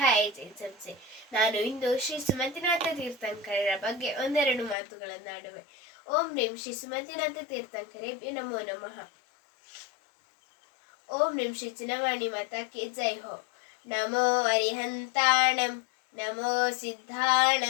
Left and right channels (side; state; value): right; drops out; at 4.8 s